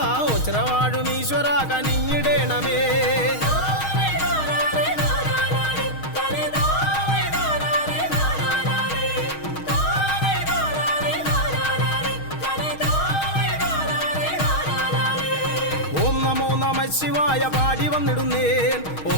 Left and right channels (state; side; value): late; right; 6.4 ms